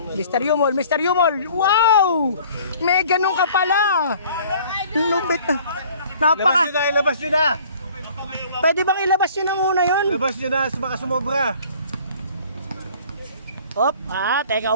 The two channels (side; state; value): both; inverted; correlation -0.52